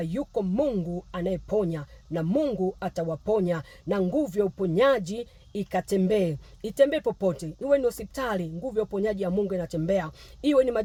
yuko Mungu anayeponya, na Mungu atawaponya, na nguvu ya uponyaji itembee popote. Iwe ni hospitali, nguvu ya uponyaji ya Mungu inatembea. Iwe ni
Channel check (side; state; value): both; identical; correlation 1.00